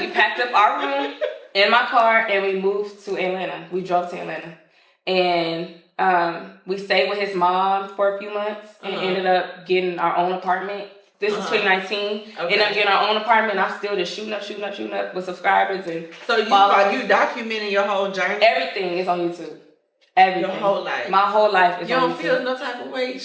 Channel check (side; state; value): both; identical; correlation 1.00